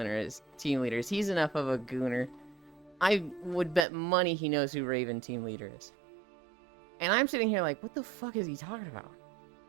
is. He's enough of a gooner. I would bet money he knows who Raven team leader is. And I'm sitting here like, what the fuck is he talking about?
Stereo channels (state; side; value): drops out; left; at 3.9 s